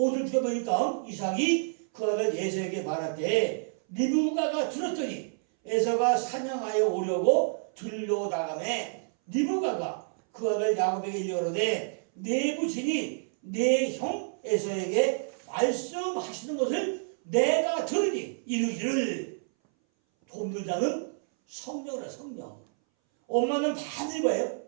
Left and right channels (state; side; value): silent; left; 59 dB below the other